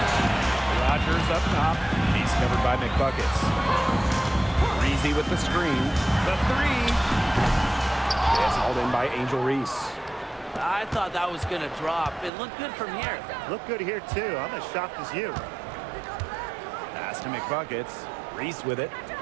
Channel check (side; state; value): left; drops out; at 12.3 s